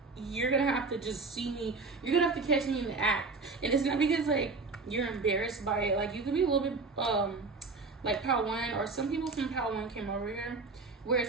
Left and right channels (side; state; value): left; quieter; 4.0 dB